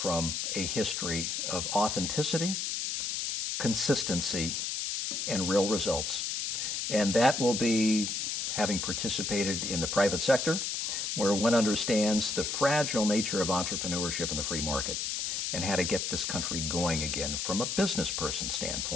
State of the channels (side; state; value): left; noise; hiss, 1 dB below the sound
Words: a history of authenticity, consistency, and real results. And that will be having participated in the private sector, where one understands the fragile nature of entrepreneurship in the free market and how to get this country going again from a business person